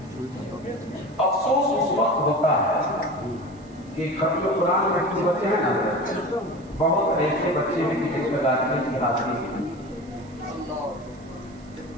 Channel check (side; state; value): right; noise; hiss, 29 dB below the sound